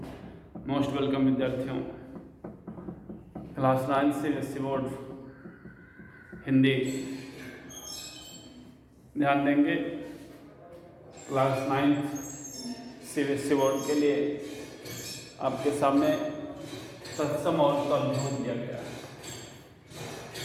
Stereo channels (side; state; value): both; identical; correlation 1.00